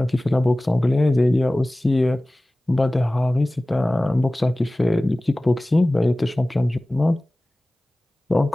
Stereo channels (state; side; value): normal; both; correlation 0.98